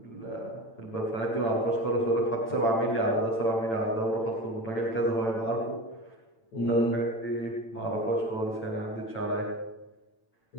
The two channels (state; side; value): late; right; 8.9 ms